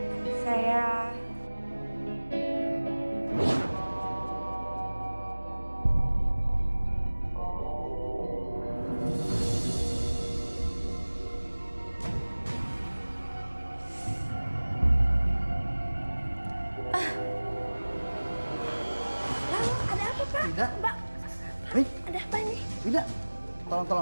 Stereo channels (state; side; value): inverted; both; correlation -1.00